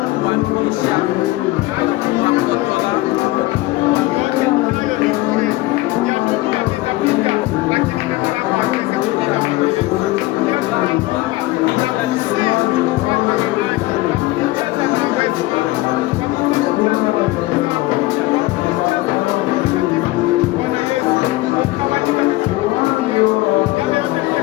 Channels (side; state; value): right; quieter; 19.1 dB